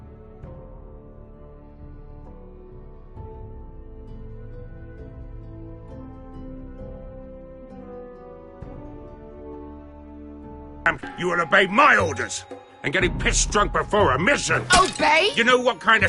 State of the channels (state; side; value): identical; both; correlation 1.00